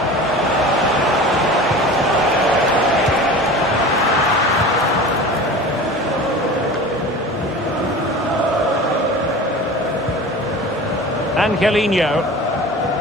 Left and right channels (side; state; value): both; normal; correlation 0.36